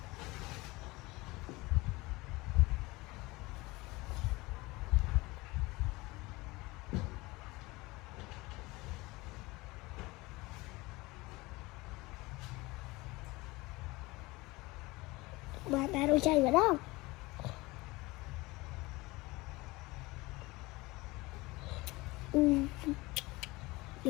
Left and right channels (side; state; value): right; quieter; 22.0 dB